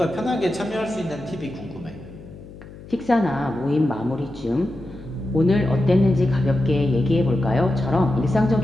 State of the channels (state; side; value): noise; left; hum, 17 dB below the sound